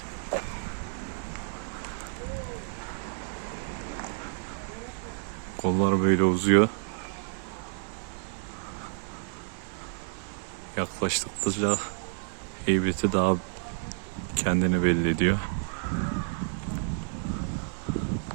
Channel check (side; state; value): left; silent; 58 dB below the other